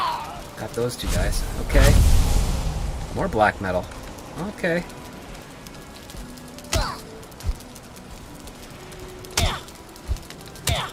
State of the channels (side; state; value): both; identical; correlation 1.00